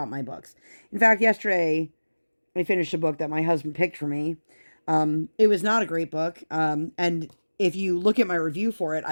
my books. In fact, yesterday I finished a book that my husband picked for me. It was not a great book. And if you look at my review for it,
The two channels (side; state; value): both; inverted; correlation -1.00